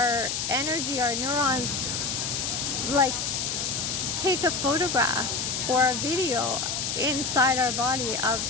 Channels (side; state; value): left; noise; hiss, 1 dB below the sound